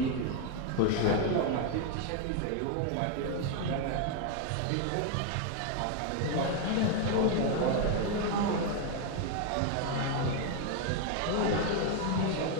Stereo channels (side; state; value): both; different; correlation 0.01